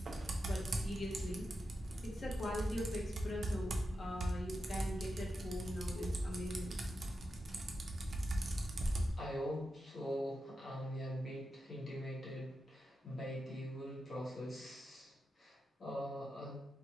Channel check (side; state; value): both; normal; correlation 0.89